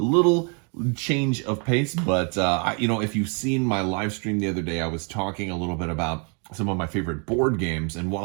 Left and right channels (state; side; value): quieter; left; 36.9 dB